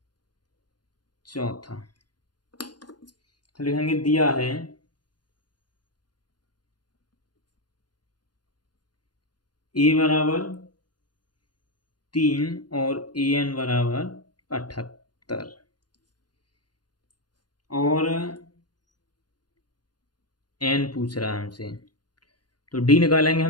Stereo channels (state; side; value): late; right; 0.70 ms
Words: चौथा। तो लिखेंगे दिया है A बराबर 3 और AN बराबर 78, और N पूछ रहा है हमसे, तो D निकालेंगे